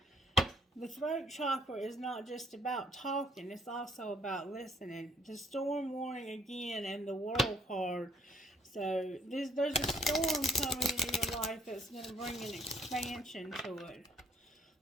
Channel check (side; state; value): both; normal; correlation 0.65